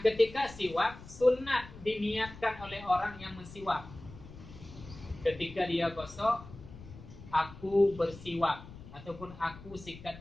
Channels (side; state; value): left; noise; rumble, 16 dB below the sound